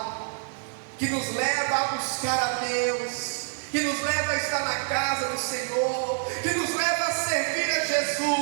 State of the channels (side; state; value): left; silent; digital silence